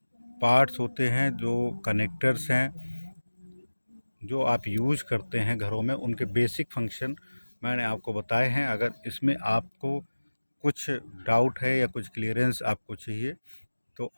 पार्ट्स होते हैं, जो कनेक्टर्स हैं, जो आप यूज़ करते हैं घरों में, उनके बेसिक फंक्शन मैंने आपको बताए हैं। अगर इसमें आपको कुछ डाउट है या कुछ क्लियरेंस आपको चाहिए तो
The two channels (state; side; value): inverted; both; correlation -1.00